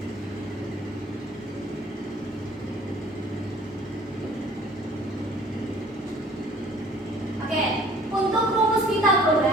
Oke, untuk rumus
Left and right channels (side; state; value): both; normal; correlation 0.53